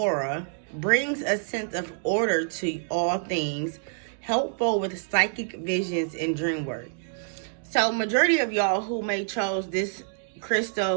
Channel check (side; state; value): left; silent; digital silence